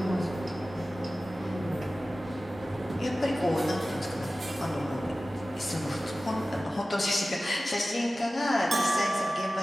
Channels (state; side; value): normal; both; correlation 0.96